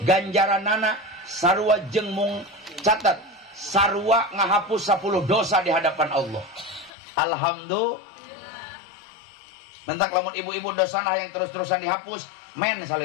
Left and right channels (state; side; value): drops out; right; at 6.9 s